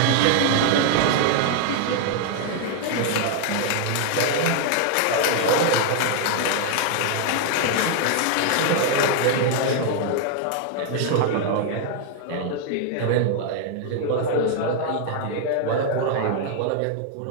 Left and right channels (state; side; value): different; both; correlation 0.00